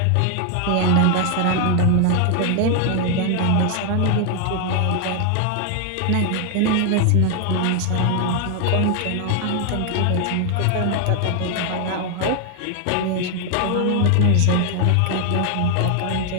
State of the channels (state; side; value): different; both; correlation 0.00